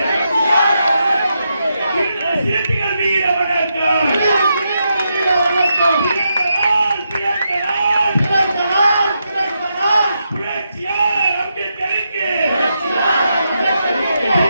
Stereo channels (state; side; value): inverted; both; correlation -0.84